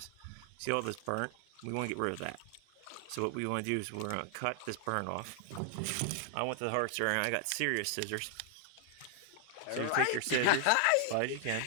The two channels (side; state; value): both; different; correlation 0.00